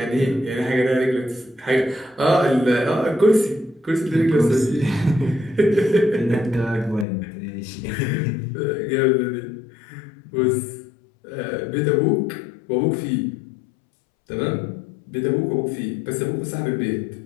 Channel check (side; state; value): right; drops out; at 7.1 s